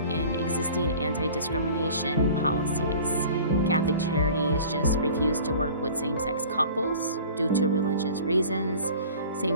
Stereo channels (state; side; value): inverted; both; correlation -0.44